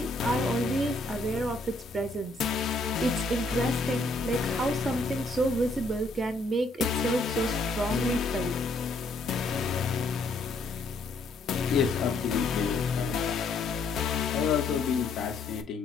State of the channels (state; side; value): quieter; right; 3.0 dB